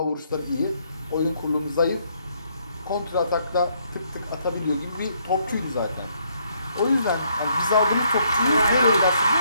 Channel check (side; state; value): both; inverted; correlation -0.71